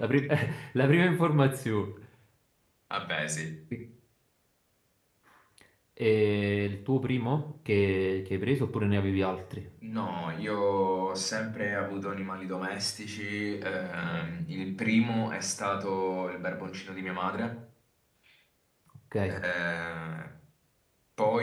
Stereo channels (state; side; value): identical; both; correlation 1.00